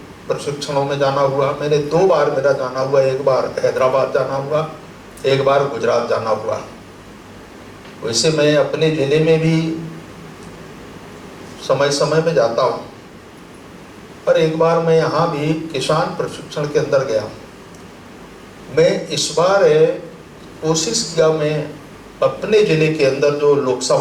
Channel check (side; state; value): both; identical; correlation 1.00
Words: प्रशिक्षणों में जाना हुआ। मैंने 2 बार मेरा जाना हुआ, एक बार हैदराबाद जाना हुआ, एक बार गुजरात जाना हुआ। वैसे मैं अपने ज़िले में भी समय समय में जाता हूँ, पर एक बार मैं यहाँ भी किसान प्रशिक्षण के अंदर गया। मैं इस बार कोशिश किया, मैं अपने ज़िले के अंदर जो